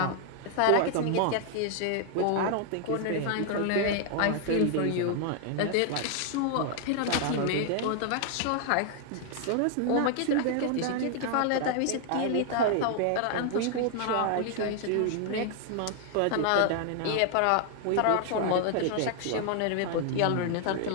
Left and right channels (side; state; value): both; different; correlation 0.00